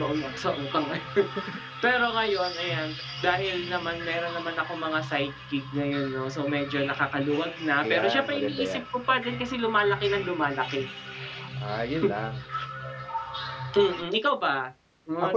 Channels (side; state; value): both; identical; correlation 1.00